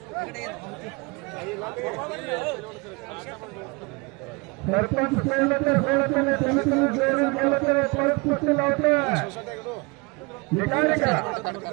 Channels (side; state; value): left; quieter; 27.5 dB